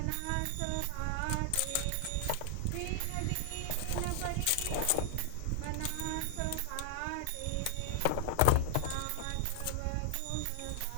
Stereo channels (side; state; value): both; different; correlation 0.00